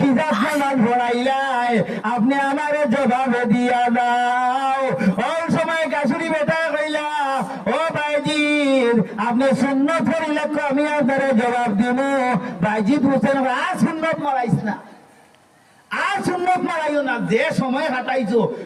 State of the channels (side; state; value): both; identical; correlation 1.00